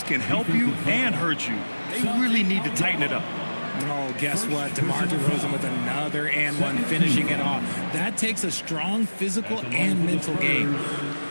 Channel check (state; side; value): inverted; both; correlation -1.00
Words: can help you and hurt you. They really need to tighten it up. Oh, guess what? DeMar DeRozan with another and one, finishing it off. That takes a strong physical and mental game.